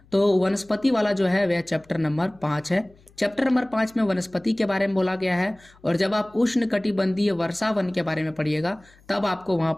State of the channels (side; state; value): left; noise; hum, 29 dB below the sound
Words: तो वनस्पति वाला जो है वह चैप्टर नंबर 5 है। चैप्टर नंबर 5 में वनस्पति के बारे में बोला गया है। और जब आप उष्ण कटिबंधीय वर्षा वन के बारे में पढ़िएगा तब आपको वहां